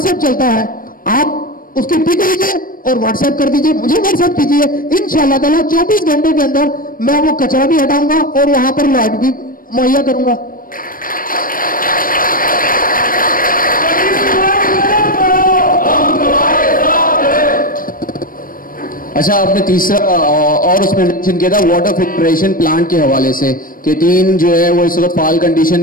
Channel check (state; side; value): late; right; 0.41 ms